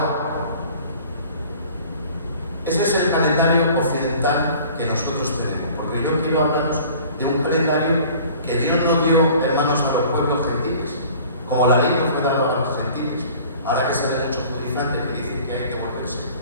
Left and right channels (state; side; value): inverted; both; correlation -0.48